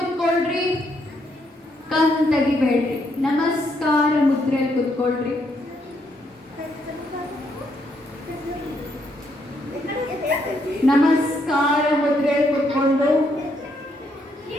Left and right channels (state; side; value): normal; both; correlation 0.75